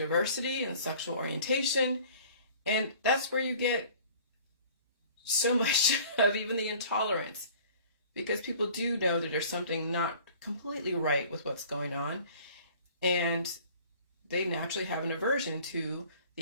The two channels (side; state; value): both; inverted; correlation -0.49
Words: and sexual orientation. And that's where you get so much of even the intolerance because people do know that there's something not completely right with what's going on, and they naturally have an aversion to